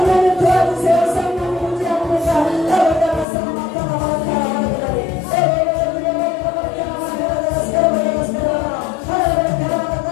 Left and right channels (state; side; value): drops out; right; at 3.2 s